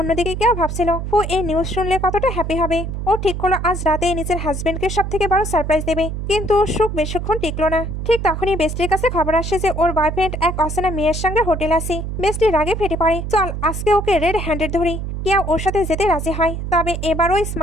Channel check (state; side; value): noise; right; hum, 5 dB below the sound